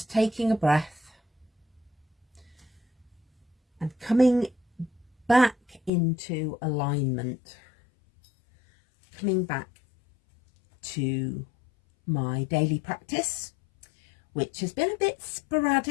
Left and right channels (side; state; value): right; drops out; at 5.9 s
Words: taking a breath and coming back into alignment, coming back to my daily practice, which has been a bit